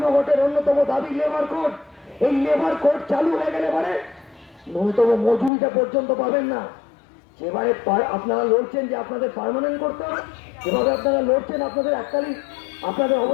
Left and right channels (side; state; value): right; drops out; at 5.5 s